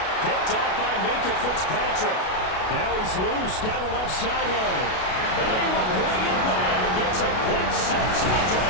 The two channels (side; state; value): right; late; 32 ms